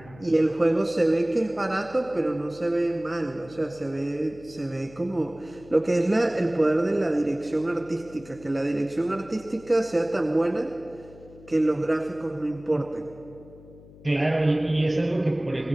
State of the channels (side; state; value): left; noise; hum, 21 dB below the sound